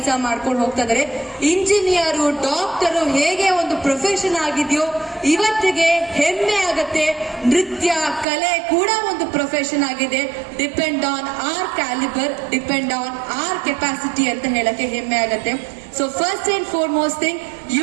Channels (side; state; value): left; drops out; at 8.2 s